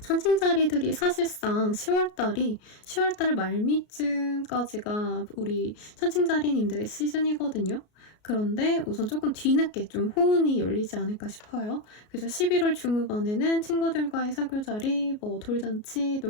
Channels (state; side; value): late; right; 33 ms